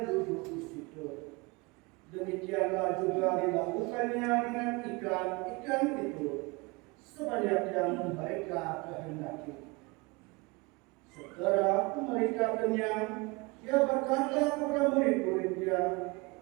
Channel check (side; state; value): left; quieter; 26.3 dB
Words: duduk di situ. Demikianlah juga dilakukannya dengan ikan-ikan itu, sebanyak yang mereka kehendaki. Setelah mereka kenyang, dia berkata kepada murid-muridnya,